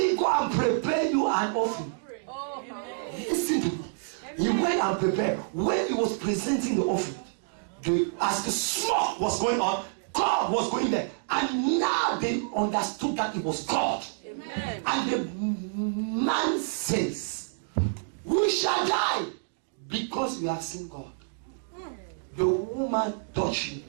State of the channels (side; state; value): left; silent; digital silence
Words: go and prepare you an offering. Listen to me. He went and prepared. When he was presenting the offering, as the smoke was going on, God was going there. And now they understood that it was God. Amen. And the man says, we shall die because we have seen God. The woman touched him